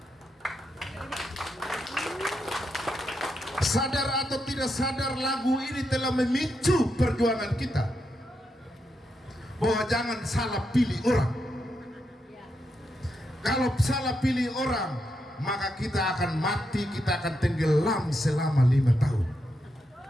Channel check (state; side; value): normal; both; correlation 0.83